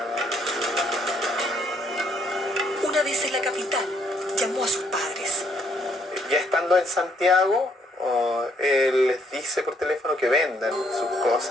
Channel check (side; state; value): both; normal; correlation 0.69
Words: vez en la capital, llamó a sus padres. Ya estando en Santiago, él les dice por teléfono que vendan sus